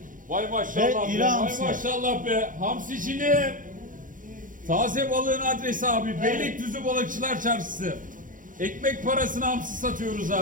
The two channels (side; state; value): left; late; 0.39 ms